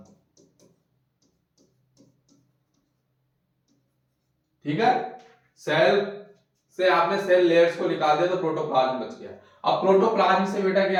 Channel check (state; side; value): identical; both; correlation 1.00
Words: ठीक है। सेल से आपने सेल लेयर्स को निकाल दिया तो प्रोटोप्लाज्म बच गया। अब प्रोटोप्लाज्म से बेटा